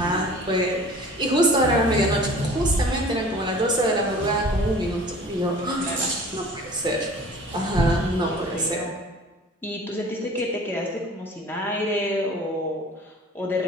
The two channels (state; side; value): normal; both; correlation 0.45